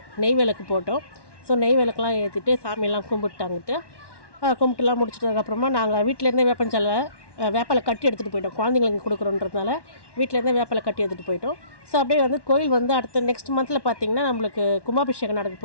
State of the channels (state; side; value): late; right; 1.1 ms